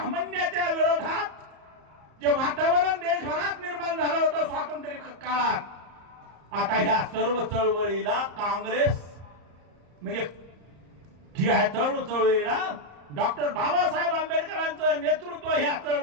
विरोधात जे वातावरण देशभरात निर्माण झालं होतं स्वातंत्र्य काळात, आता ह्या सर्व चळवळीला काँग्रेस म्हणजे ह्या चळवळीला डॉक्टर बाबासाहेब आंबेडकरांचं नेतृत्व ह्या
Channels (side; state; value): left; late; 34 ms